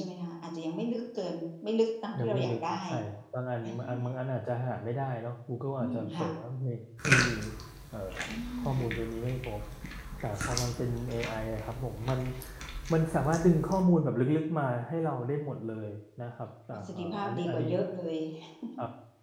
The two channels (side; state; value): both; identical; correlation 1.00